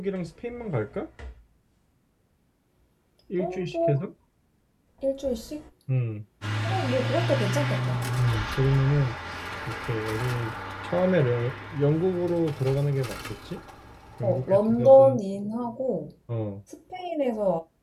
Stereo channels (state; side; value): identical; both; correlation 1.00